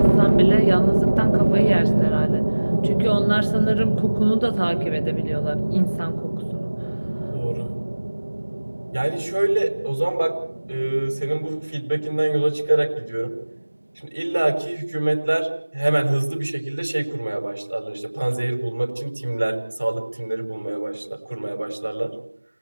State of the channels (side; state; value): both; inverted; correlation -1.00